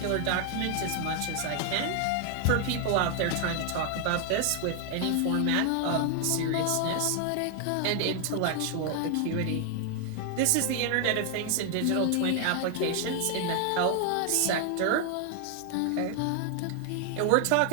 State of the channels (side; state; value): both; different; correlation 0.00